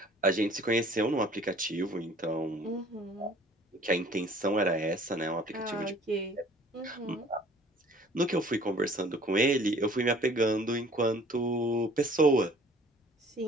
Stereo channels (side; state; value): both; normal; correlation 0.52